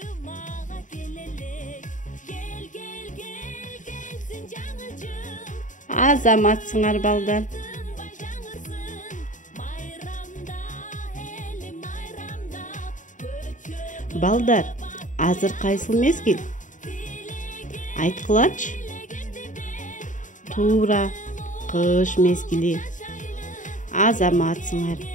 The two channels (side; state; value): right; late; 0.37 ms